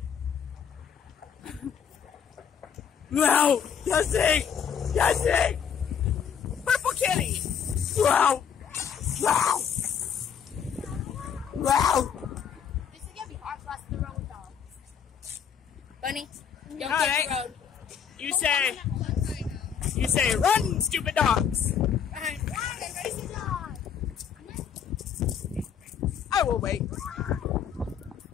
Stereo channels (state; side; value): quieter; right; 7.6 dB